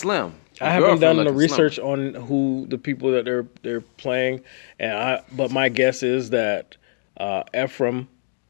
I haven't done the research on who the people that they're playing, but my guess is that Ephraim,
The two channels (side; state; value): right; silent; digital silence